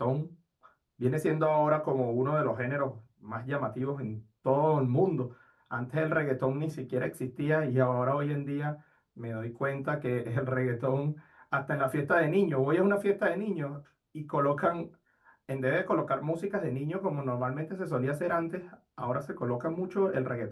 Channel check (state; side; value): identical; both; correlation 1.00